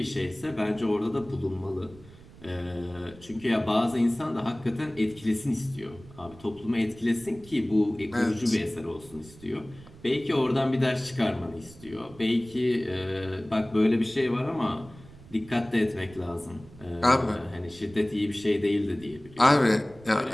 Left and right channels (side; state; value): right; noise; rumble, 21 dB below the sound